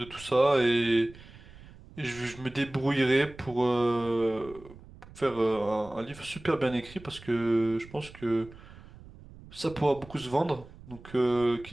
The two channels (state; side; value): noise; right; rumble, 19 dB below the sound